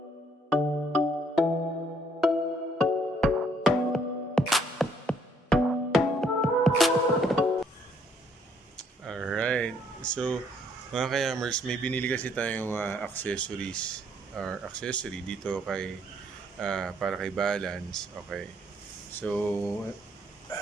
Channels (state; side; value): normal; both; correlation 0.66